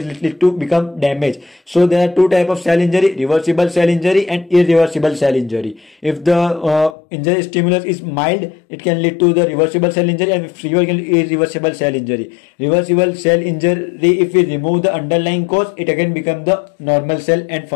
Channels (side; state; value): right; drops out; at 7.0 s